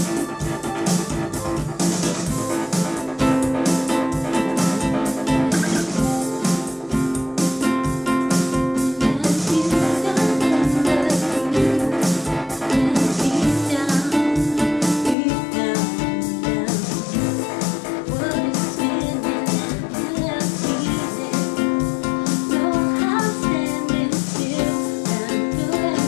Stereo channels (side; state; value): right; drops out; at 15.2 s